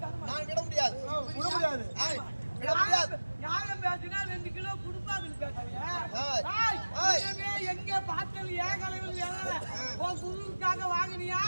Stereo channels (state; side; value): inverted; both; correlation -1.00